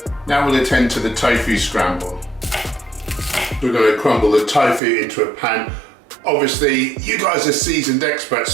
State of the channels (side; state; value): left; drops out; at 4.8 s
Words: Now we'll attend to the tofu scramble. We're going to crumble the tofu into a pan. Obviously, you guys are seasoned experts,